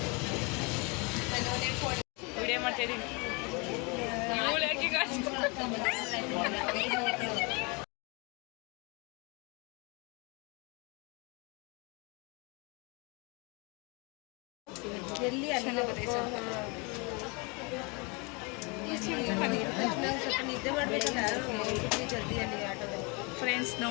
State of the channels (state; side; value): quieter; right; 30.1 dB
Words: ವಿಡಿಯೋ ಮಾಡ್ತಾ ಇದ್ದೀನಿ. ಎಲ್ಲಿ ನಿದ್ದೆ ಮಾಡಬೇಕಲ್ಲ ಜಲ್ದಿಯಲ್ಲಿ ಆಟೋದಲ್ಲಿ. ಫ್ರೆಂಡ್ಸ್